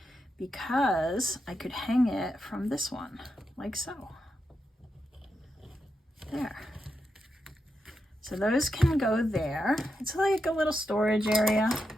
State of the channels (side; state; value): both; normal; correlation 0.86